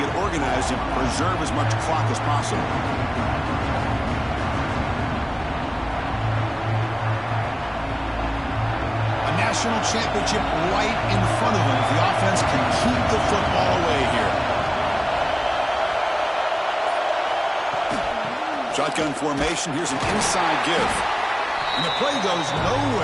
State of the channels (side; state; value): both; identical; correlation 1.00